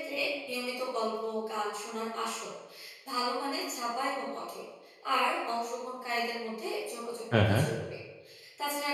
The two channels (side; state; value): both; identical; correlation 1.00